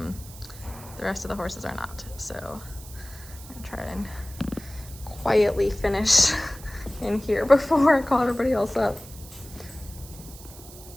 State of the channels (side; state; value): right; noise; hiss, 17 dB below the sound